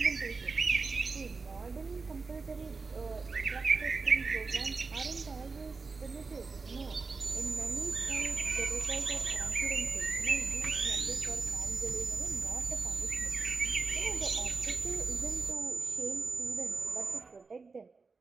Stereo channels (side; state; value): left; quieter; 4.4 dB